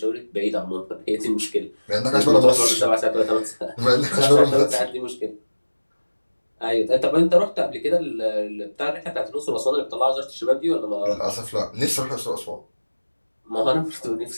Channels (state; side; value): inverted; both; correlation -1.00